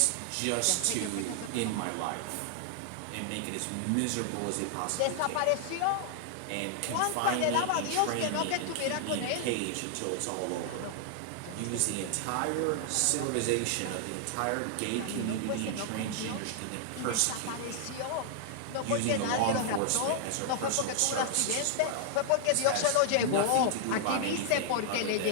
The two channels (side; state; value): both; different; correlation 0.00